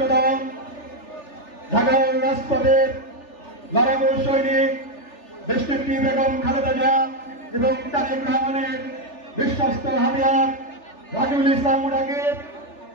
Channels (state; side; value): late; right; 3.4 ms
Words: দল ঢাকা রাজপথের লড়াকু সৈনিক দেশনেত্রী বেগম খালেদা জিয়া এবং তারেক রহমানের বিশ্বস্ত হাতিয়ার রাকিবুল ইসলাম রাকিব,